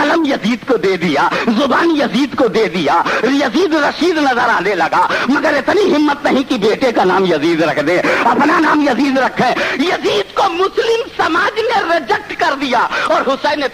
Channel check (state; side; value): identical; both; correlation 1.00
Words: یزید کو دے دیا، زبان یزید کو دے دیا، یزید رشید نظر آنے لگا، مگر اتنی ہمت نہیں کہ بیٹے کا نام یزید رکھ دے، اپنا نام یزید رکھے۔ یزید کو مسلم سماج نے ریجیکٹ کر دیا، اور حسین